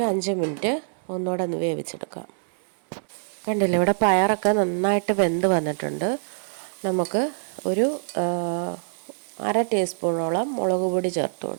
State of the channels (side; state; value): left; silent; digital silence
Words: 5 മിനിറ്റ് ഒന്നുകൂടെ ഒന്ന് വേവിച്ചെടുക്കാം. കണ്ടില്ലേ, ഇവിടെ പയറൊക്കെ നന്നായിട്ട് വെന്ത് വന്നിട്ടുണ്ട്. നമുക്ക് ഒരു 1/2 ടീസ്പൂണോളം മുളക് പൊടി ചേർത്ത്